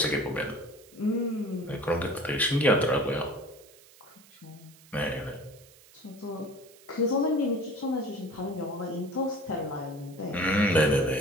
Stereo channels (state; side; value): noise; right; hiss, 24 dB below the sound